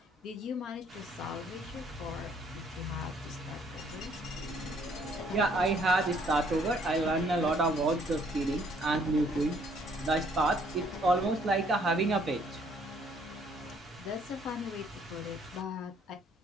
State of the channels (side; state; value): both; normal; correlation 0.64